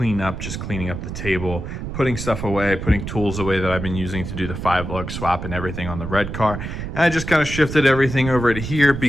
just cleaning up the table, putting stuff away, putting tools away that I've been using to do the 5-lug swap and everything on the red car. And I just kind of shifted everything over to here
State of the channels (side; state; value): right; noise; rumble, 7 dB below the sound